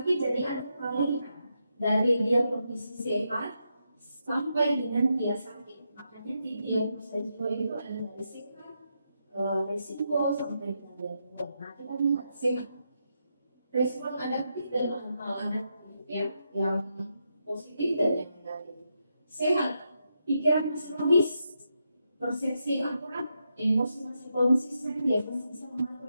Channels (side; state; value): both; inverted; correlation -0.83